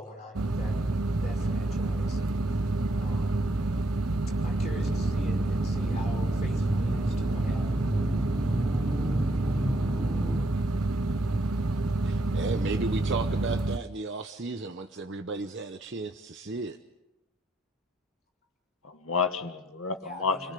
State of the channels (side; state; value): both; normal; correlation 0.73